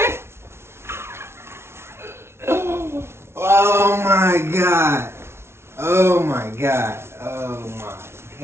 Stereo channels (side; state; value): left; late; 0.12 ms